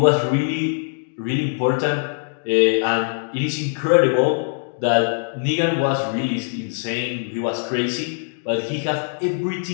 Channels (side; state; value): right; silent; digital silence